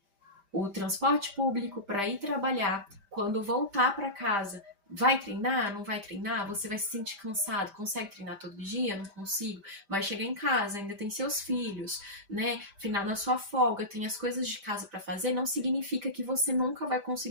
o transporte público para ir trabalhar, quando voltar para casa, vai treinar? Não vai treinar? Você vai se sentir cansado? Consegue treinar todo dia? Não consigo. Vai chegar em casa, ainda tem seus filhos, né? Final na sua folga, tem as coisas de casa para fazer. Não significa que você nunca vai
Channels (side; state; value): left; late; 5.1 ms